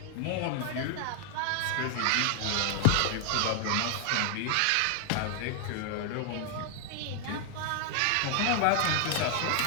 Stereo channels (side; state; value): both; different; correlation 0.00